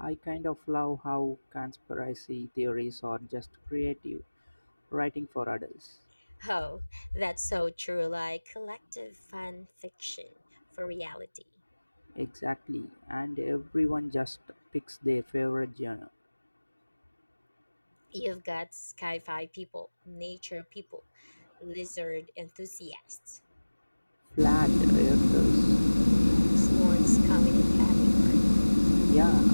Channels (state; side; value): inverted; both; correlation -1.00